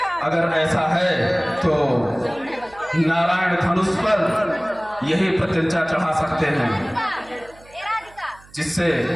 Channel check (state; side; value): noise; right; hum, 25 dB below the sound